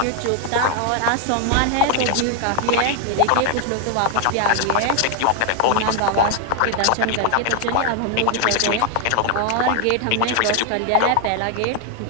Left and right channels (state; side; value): different; both; correlation 0.00